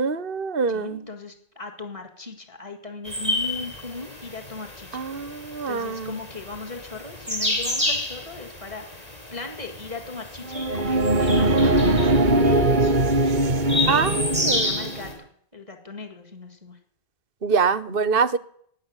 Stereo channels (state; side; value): late; left; 1.8 ms